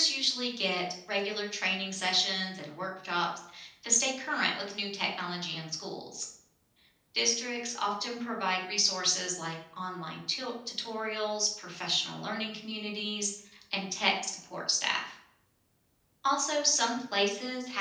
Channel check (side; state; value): both; identical; correlation 1.00